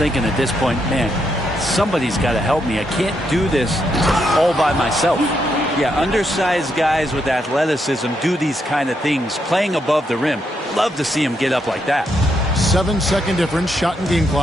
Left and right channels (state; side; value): normal; both; correlation 0.79